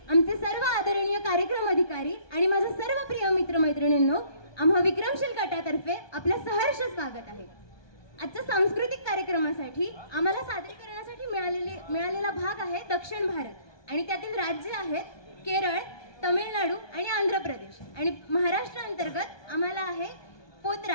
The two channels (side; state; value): right; late; 1.2 ms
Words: आमचे सर्व आदरणीय कार्यक्रम अधिकारी आणि माझ्या सर्व प्रिय मित्रमैत्रिणींनो, आम्हा विक्रमशील गटातर्फे आपल्या सहर्ष स्वागत आहे. आजच्या सांस्कृतिक कार्यक्रमासाठी आम्हाला सादरीकरणासाठी मिळालेला भाग आहे दक्षिण भारत आणि त्यातील राज्य आहेत केरळ, तमिळनाडू आणि आंध्र प्रदेश आणि महाराष्ट्र अंतर्गत आम्हाला आहे